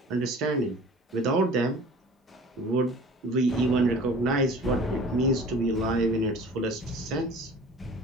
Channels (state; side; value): normal; both; correlation 0.44